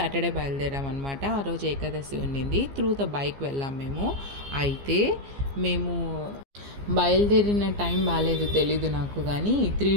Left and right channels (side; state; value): left; late; 15 ms